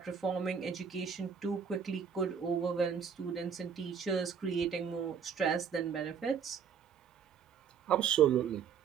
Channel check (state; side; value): quieter; left; 7.0 dB